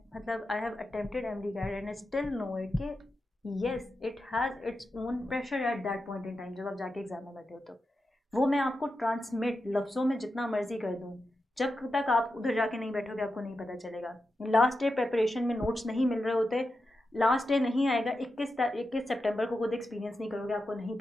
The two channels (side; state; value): both; normal; correlation 0.89